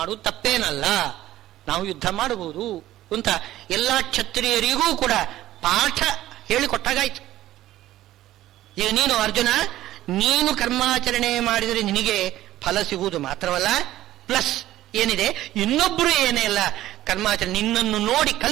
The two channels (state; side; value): quieter; left; 14.5 dB